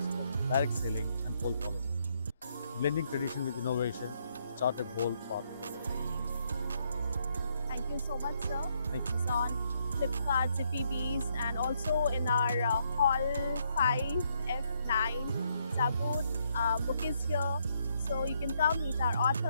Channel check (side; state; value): both; inverted; correlation -0.74